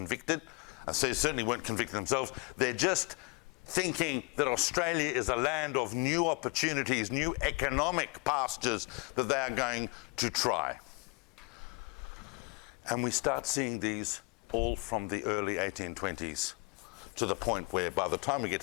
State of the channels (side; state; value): right; quieter; 30.1 dB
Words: So they certainly weren't convicted themselves. They're just thinking that Australia is a land of new opportunities, new economic pastures that they are going to try. And we start seeing these all from the early 1820s to the point where by the time we get